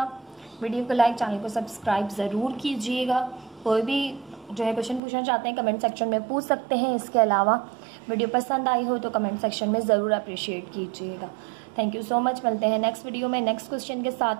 वीडियो को लाइक, चैनल को सब्सक्राइब ज़रूर कीजिएगा। कोई भी जो है क्वेश्चन पूछना चाहते हैं कमेंट सेक्शन में पूछ सकते हैं। इसके अलावा वीडियो पसंद आई हो तो कमेंट सेक्शन में ज़रूर अप्रिशिएट कीजिएगा। Thank you so much. मिलते हैं नेक्स्ट वीडियो में नेक्स्ट क्वेश्चन के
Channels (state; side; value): drops out; left; at 5.0 s